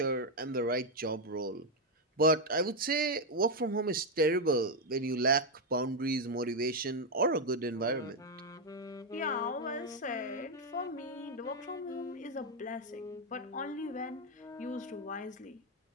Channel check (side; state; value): both; normal; correlation 0.02